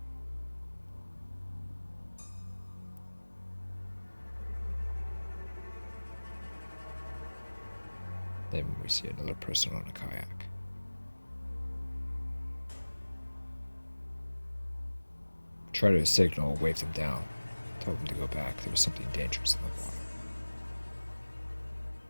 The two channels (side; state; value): both; inverted; correlation -1.00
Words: Then we see another person on a kayak. Try to signal, wave them down, tell them to go back. There was something dangerous in the water.